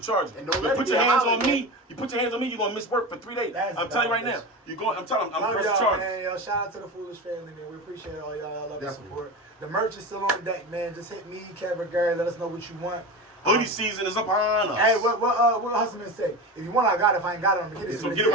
charges. And don't You let it put be your a hands on holiday. me, you're going to miss work for 3 days. That's I'm telling you right now. dumb, I'm telling you, I'm Love pressing y'all, charges. man. Yo, shout out to the Foolish family, man. We appreciate all y'all. Y'all love the Definitely. support. The merch is still on deck, man. Just hit me, Kevin, Gary. Let us know what you want. Hoodie season is upon us. Hey, what Hustleman say? If you want, I got it. If I ain't got it, I'm gonna get it. So get it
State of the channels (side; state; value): both; normal; correlation 0.26